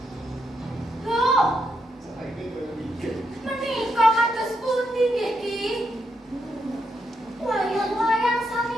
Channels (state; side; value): normal; both; correlation 0.81